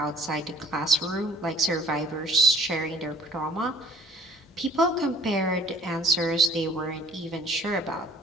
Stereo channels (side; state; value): both; normal; correlation 0.51